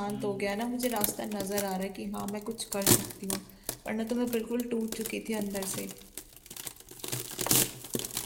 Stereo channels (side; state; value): both; identical; correlation 1.00